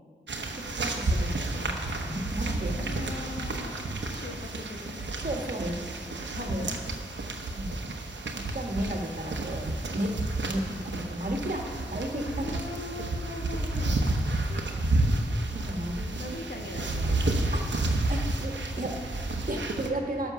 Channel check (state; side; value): normal; both; correlation 0.73